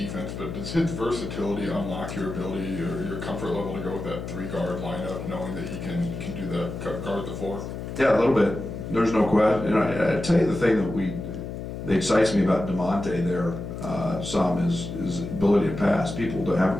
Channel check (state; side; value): noise; left; hum, 7 dB below the sound